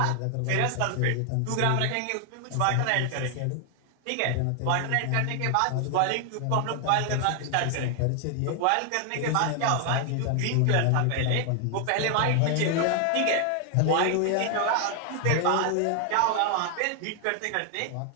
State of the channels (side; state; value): both; different; correlation 0.00